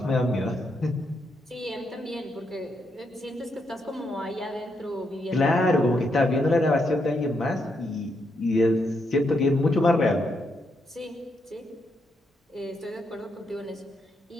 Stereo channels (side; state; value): both; normal; correlation 0.79